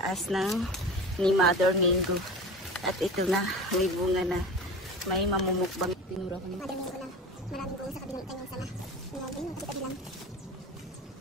ng ni Mother Mingo. At ito na, may bunga na. May mamumukbang. Tinura ko ni Mother Mingo na maraming bunga sa kabilang kanyang sama. Ngayon, nakita lang.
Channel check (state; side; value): normal; both; correlation 0.33